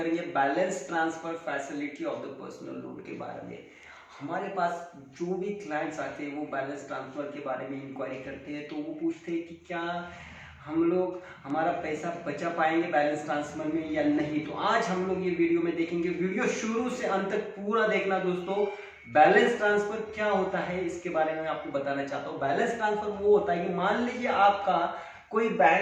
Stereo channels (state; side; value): identical; both; correlation 1.00